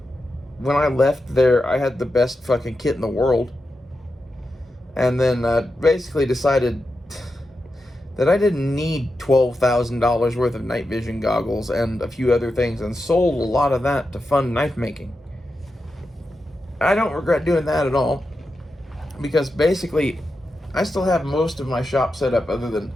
When I left there, I had the best fucking kit in the world. And then basically decided that I didn't need $12,000 worth of night vision goggles and a few other things, and sold a lot of that to fund knife making. I don't regret doing that at all, because basically I still have most of my shop set up other than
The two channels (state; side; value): normal; both; correlation 0.89